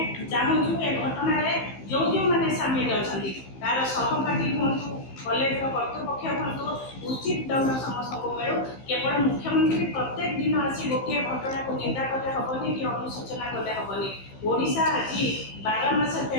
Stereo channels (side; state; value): right; late; 15 ms